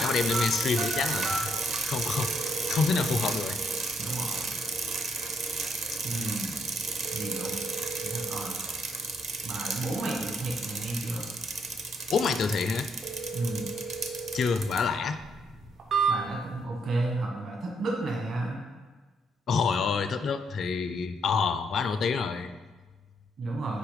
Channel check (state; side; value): normal; both; correlation 0.73